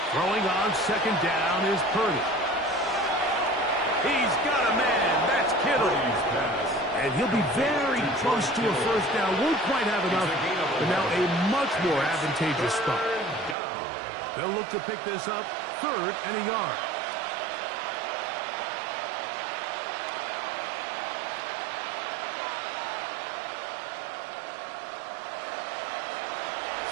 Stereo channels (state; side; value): drops out; left; at 13.6 s